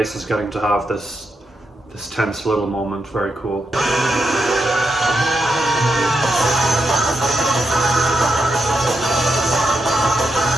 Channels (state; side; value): normal; both; correlation 0.84